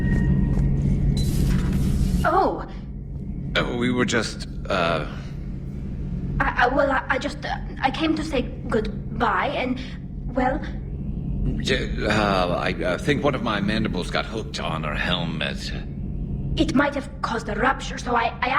Oh! We were just, I came to say goodbye and, well... I think one of my mandibles got hooked on her helmet. It might have caused a rupture, so I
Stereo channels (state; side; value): identical; both; correlation 1.00